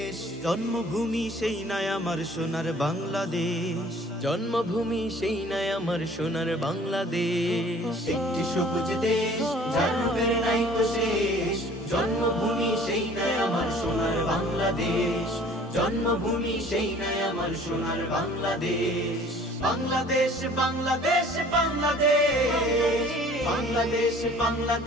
জন্মভূমি সেই নাই আমার সোনার বাংলাদেশ। জন্মভূমি সেই নাই আমার সোনার বাংলাদেশ। একটি সবুজ দেশ যার রূপের নাইকো শেষ, জন্মভূমি সেই নাই আমার সোনার বাংলাদেশ। জন্মভূমি সেই নাই আমার সোনার বাংলাদেশ। বাংলাদেশ বাংলাদেশ বাংলাদেশ বাংলাদেশ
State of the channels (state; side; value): normal; both; correlation 0.51